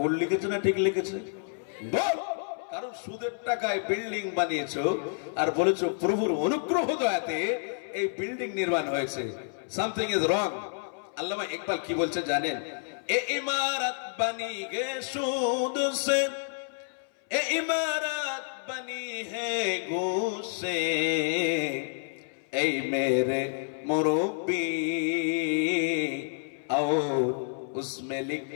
লিখেছে না ঠিক লিখেছে? বল। কারণ সুদের টাকায় বিল্ডিং বানিয়েছো আর বলেছো প্রভুর অনুগ্রহ দয়াতে এই বিল্ডিং নির্মাণ হয়েছে। Something is wrong. আল্লামা ইকবাল কি বলছে জানেন? এ ইমারত বানি গে সুদ সে, এ ইমারত बनी है घूस से, ऐ मेरे मुरब्बी, और उसमें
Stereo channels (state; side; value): silent; right; 58 dB below the other